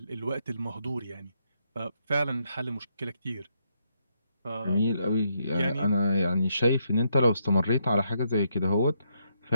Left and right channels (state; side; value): inverted; both; correlation -0.77